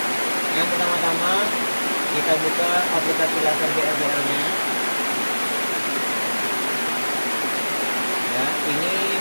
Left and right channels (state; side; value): inverted; both; correlation -1.00